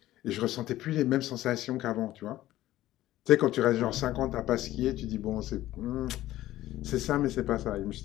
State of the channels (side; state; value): right; quieter; 14.9 dB